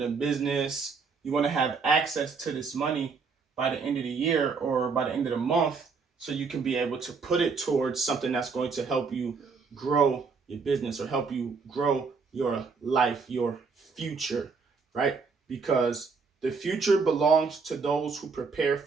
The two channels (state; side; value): quieter; left; 4.9 dB